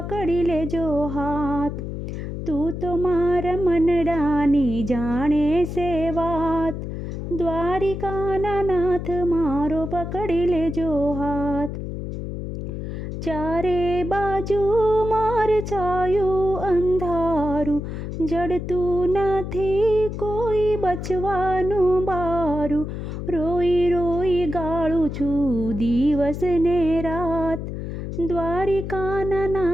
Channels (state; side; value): noise; left; hum, 6 dB below the sound